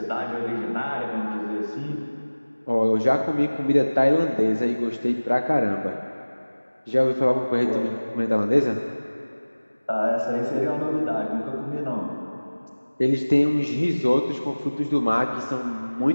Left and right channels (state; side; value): inverted; both; correlation -1.00